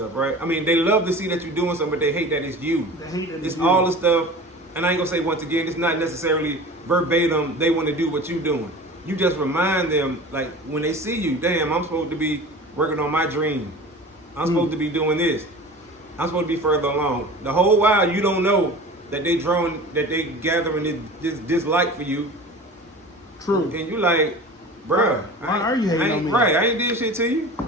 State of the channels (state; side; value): normal; both; correlation 0.37